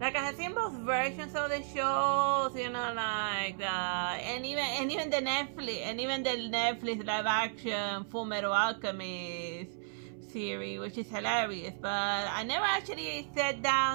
I have seen both versions of the shows, and even the Netflix live action Fullmetal Alchemist series, which is hilarious. But I never actually sat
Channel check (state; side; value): silent; left; 55 dB below the other